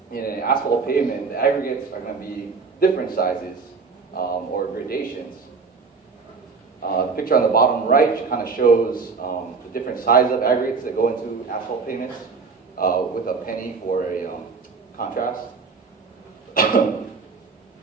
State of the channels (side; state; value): left; quieter; 4.8 dB